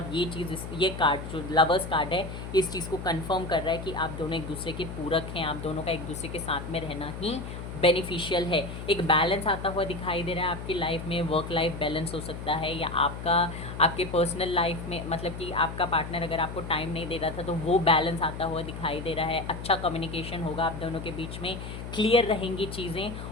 ये चीज़, ये कार्ड जो लवर्स कार्ड है, ये इस चीज़ को कंफर्म कर रहा है कि आप दोनों एक दूसरे के पूरक हैं, आप दोनों का एक दूसरे के साथ में रहना ही बेनिफिशियल है। एक बैलेंस आता हुआ दिखाई दे रहा है आपकी लाइफ में, वर्क लाइफ बैलेंस हो सकता है, या आपके पर्सनल लाइफ में, मतलब कि आपका पार्टनर अगर आपको टाइम नहीं दे रहा था तो वो बैलेंस आता हुआ दिखाई दे रहा है। अच्छा कम्युनिकेशन होगा आप दोनों के बीच में, क्लियर रहेंगी चीज़ें,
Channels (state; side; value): noise; left; hum, 8 dB below the sound